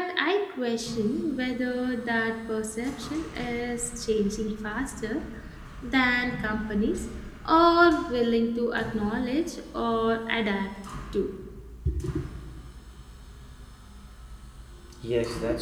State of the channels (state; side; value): identical; both; correlation 1.00